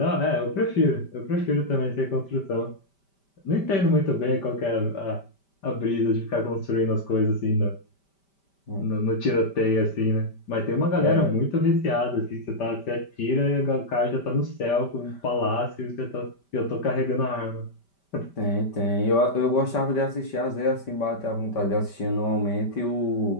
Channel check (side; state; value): right; late; 5.1 ms